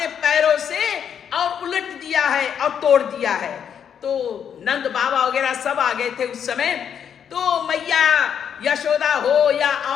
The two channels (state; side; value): quieter; right; 8.2 dB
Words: पैरों से और उलट दिया है और तोड़ दिया है। तो नंद बाबा वगैरह सब आ गए थे उस समय। तो मैया यशोदा हो या